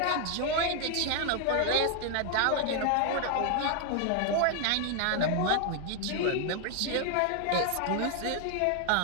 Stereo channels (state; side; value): different; both; correlation 0.00